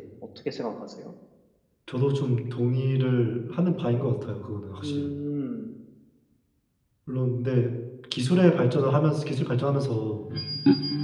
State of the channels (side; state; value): both; identical; correlation 1.00